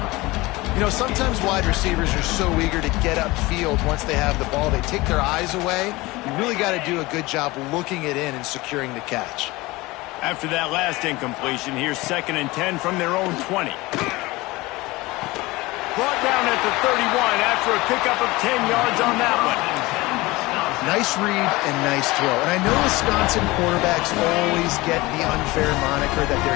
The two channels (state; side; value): quieter; right; 21.2 dB